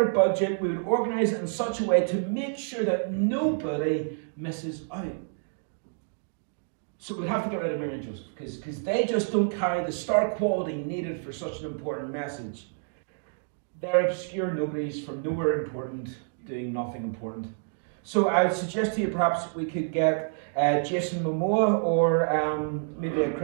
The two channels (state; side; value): silent; left; digital silence